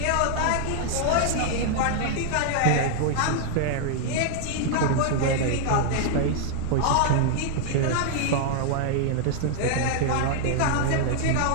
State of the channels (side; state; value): both; different; correlation 0.00